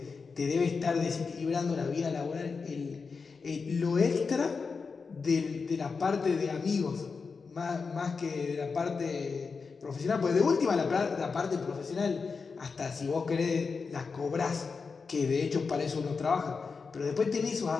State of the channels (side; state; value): right; quieter; 4.9 dB